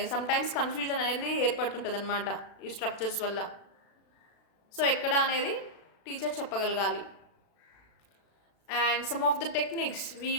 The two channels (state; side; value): late; right; 36 ms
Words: సమ్టైమ్స్ కన్ఫ్యూజన్ అనేది ఏర్పడుతుంటుంది అనమాట ఈ స్ట్రక్చర్స్ వల్ల. సో ఎక్కడ అనేది టీచర్ చెప్పగలగాలి. And some of the techniques we